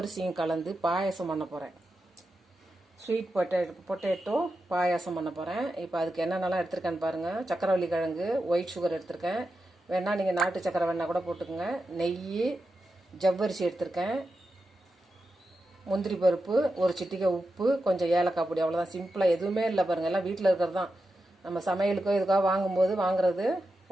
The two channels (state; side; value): normal; both; correlation 0.89